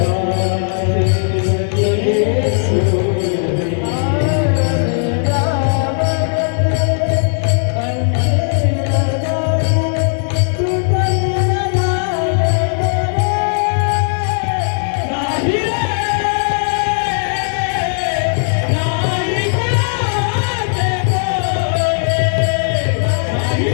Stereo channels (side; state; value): right; silent; 65 dB below the other